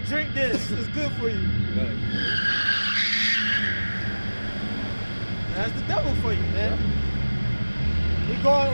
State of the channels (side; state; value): both; inverted; correlation -1.00